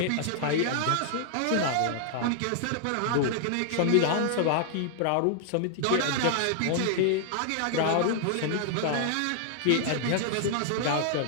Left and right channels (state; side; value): different; both; correlation -0.01